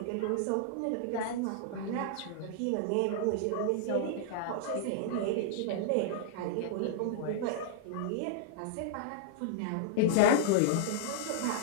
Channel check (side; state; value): both; different; correlation -0.01